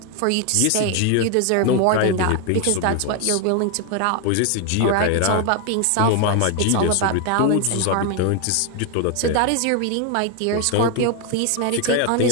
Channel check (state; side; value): different; both; correlation 0.01